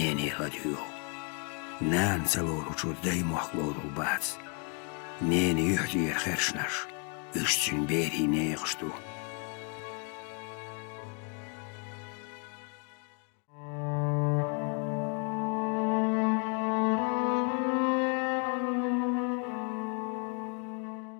ladjuo. Nään salorutsut daimuakloodul baats. Neeni yhtiir hersnas. Ystsyn beri neeqstu.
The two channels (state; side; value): quieter; right; 37.2 dB